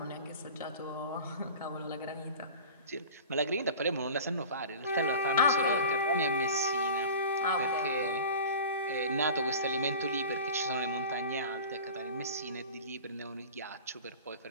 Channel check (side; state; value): both; inverted; correlation -0.37